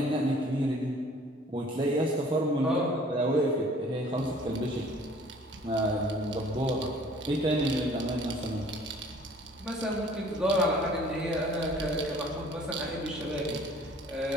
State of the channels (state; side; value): normal; both; correlation 0.53